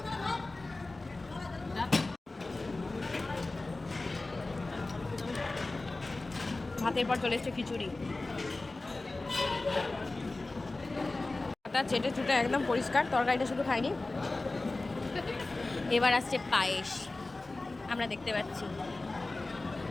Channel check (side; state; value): right; quieter; 3.2 dB